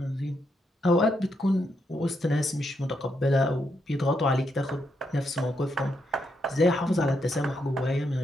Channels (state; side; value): normal; both; correlation 0.80